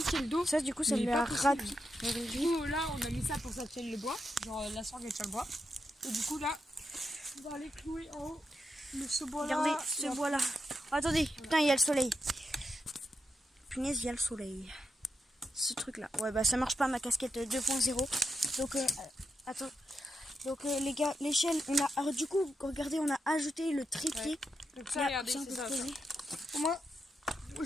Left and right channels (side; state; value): both; normal; correlation 0.85